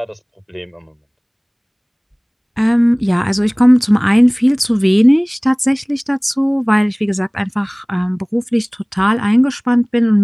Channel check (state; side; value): identical; both; correlation 1.00